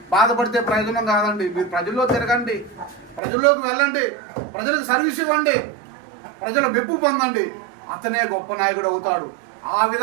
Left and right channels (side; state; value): left; drops out; at 3.2 s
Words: బాధపడితే ప్రయోజనం కాదండి. మీరు ప్రజల్లో తిరగండి, ప్రజల్లోకి వెళ్ళండి, ప్రజలకు సర్వీస్ ఇవ్వండి, ప్రజల మెప్పు పొందండి, అతనే గొప్ప నాయకుడు అవుతాడు. ఆ